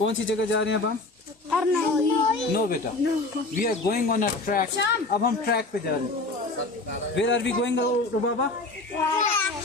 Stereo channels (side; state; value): right; quieter; 3.1 dB